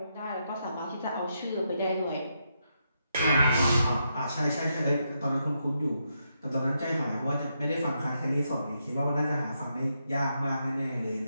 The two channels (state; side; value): inverted; both; correlation -0.82